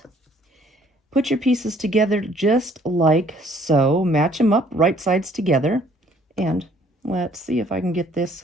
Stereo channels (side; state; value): both; normal; correlation 0.60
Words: Put your pieces together just like so. Match them up, right sides together. And let's see if I can get this